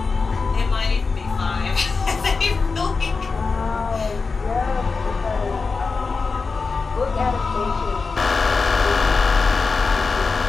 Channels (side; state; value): right; quieter; 4.5 dB